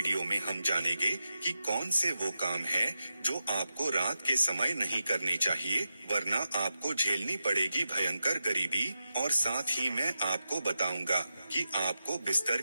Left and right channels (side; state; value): both; inverted; correlation -0.90